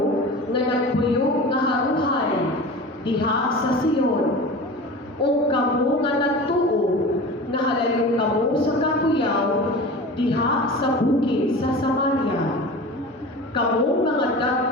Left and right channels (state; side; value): normal; both; correlation 0.34